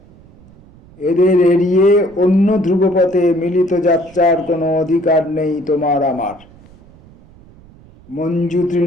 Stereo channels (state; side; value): noise; right; rumble, 25 dB below the sound